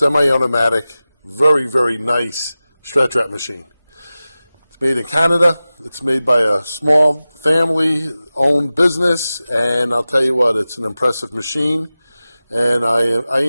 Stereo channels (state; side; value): inverted; both; correlation -0.96